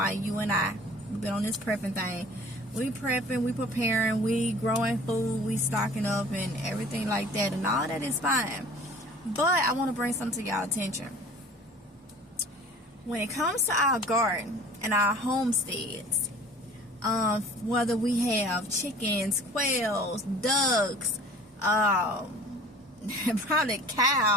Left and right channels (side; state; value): both; normal; correlation 0.46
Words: you and I. We've been on this prepping thing. We prepping, we preparing, we growing food, we stocking up and everything like that, and all that is fine. But I want to bring something to y'all attention. When it comes to our garden and our homesteads, whether we have chickens, quails, ducks, probably